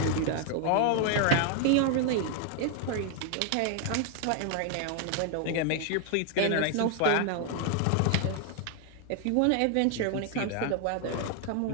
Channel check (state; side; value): different; both; correlation 0.00